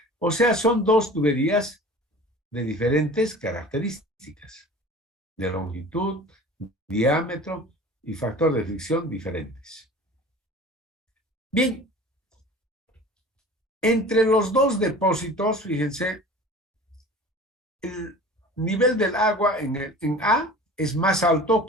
O sea, son dos tuberías de diferentes características, de longitud, diámetro y factor de fricción diferentes. Bien, entre los dos depósitos, fíjense, el nivel del agua en A es más alto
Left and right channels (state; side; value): normal; both; correlation 0.41